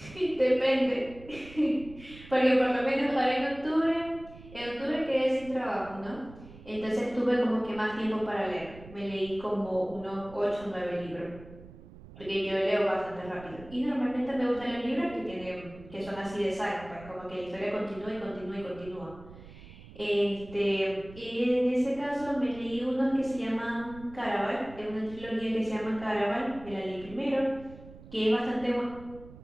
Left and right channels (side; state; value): right; noise; rumble, 18 dB below the sound